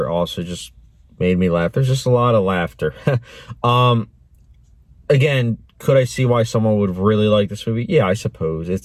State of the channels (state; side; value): identical; both; correlation 1.00